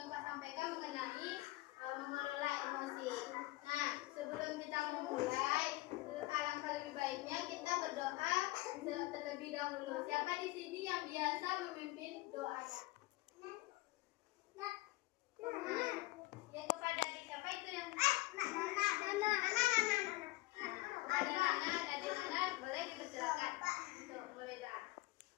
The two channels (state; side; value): quieter; right; 20.2 dB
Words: Kak sampaikan mengenai mengelola emosi. Nah, sebelum kita memulai, alangkah lebih baiknya kita berdoa terlebih dahulu. Siapa di sini yang biasa memimpin doanya? Ya kepada adik siapa itu yang? Kepada Nana, adik Nana boleh dipersilakan. Tuh, boleh doa.